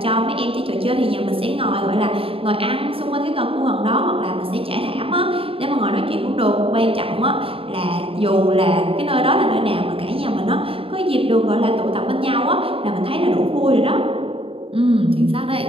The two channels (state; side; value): late; left; 0.27 ms